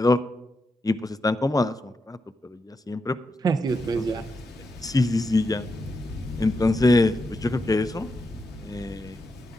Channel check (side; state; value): both; normal; correlation 0.85